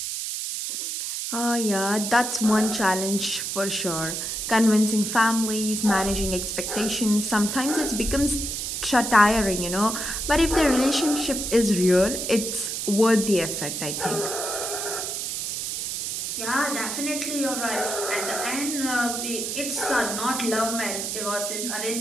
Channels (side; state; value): right; noise; hiss, 3 dB below the sound